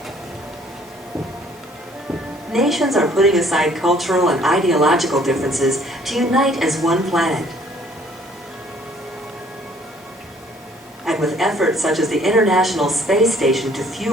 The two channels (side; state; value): both; normal; correlation 0.59